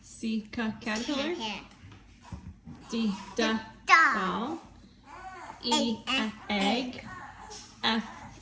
C, caterpillar. Here. D, Dog. ball. E, egg. F,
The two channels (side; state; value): both; identical; correlation 1.00